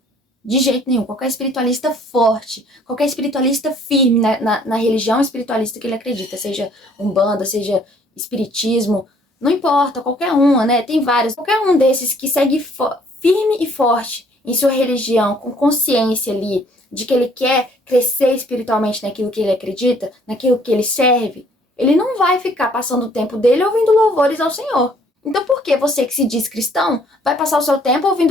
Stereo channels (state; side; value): normal; both; correlation 0.60